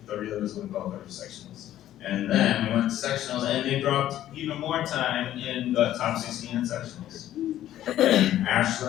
the relay was going to qualify for sectionals. And then we went to sectionals, and they dropped even more time in the top 16 in sectionals. And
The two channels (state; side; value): quieter; right; 12.6 dB